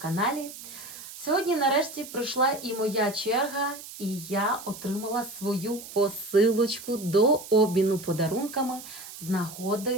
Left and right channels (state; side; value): noise; right; hiss, 14 dB below the sound